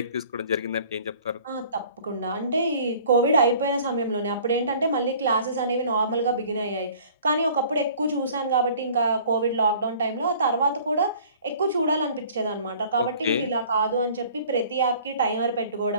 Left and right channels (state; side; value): inverted; both; correlation -0.51